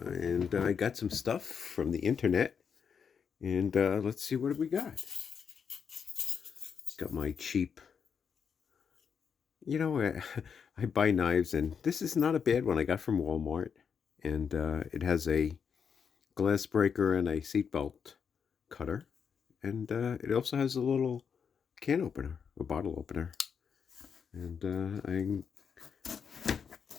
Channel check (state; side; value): quieter; right; 6.8 dB